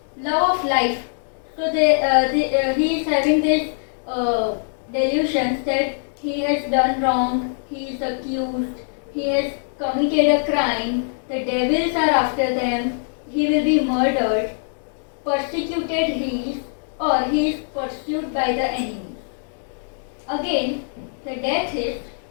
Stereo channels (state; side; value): silent; right; digital silence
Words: love of life. So he is having this delusions that he has done wrong, he is accused, he has committed a crime, the devils are after them, he will be murdered, persecuted he is, or he is pursued by the enemy. Again, the death is